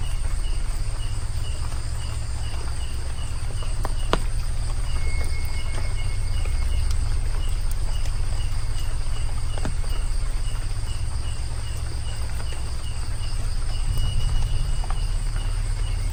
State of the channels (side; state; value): both; identical; correlation 1.00